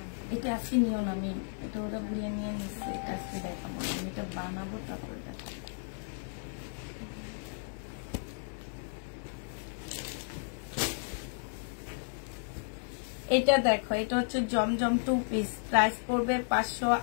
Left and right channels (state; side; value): silent; right; digital silence